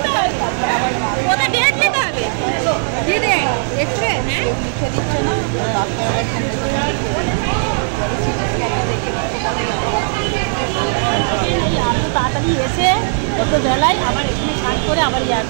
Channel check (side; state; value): left; silent; digital silence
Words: ওটা ডেট নিতে হবে, দিদি এক্সরে হ্যাঁ লিখে দিচ্ছে না ডাক্তার। আরও তাড়াতাড়ি এসে যত বেলায় আবার এখানে কাজ করে আবার